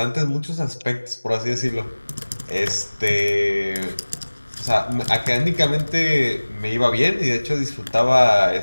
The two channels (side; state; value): both; inverted; correlation -1.00